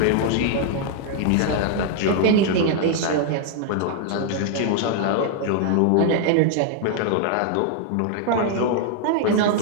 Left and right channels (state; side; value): different; both; correlation 0.00